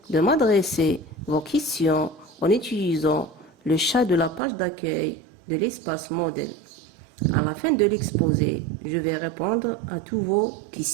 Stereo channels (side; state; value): left; drops out; at 4.4 s